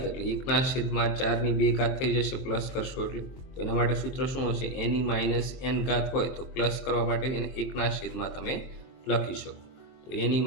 એટલે 1/4 ની 2 ઘાત થઈ જશે. પ્લસ કરશો એટલે તો એના માટે સૂત્ર શું હશે? એની -n ઘાત હોય તો પ્લસ કરવા માટે એને 1/માં તમે લખી શકો. તો એની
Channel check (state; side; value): late; right; 23 ms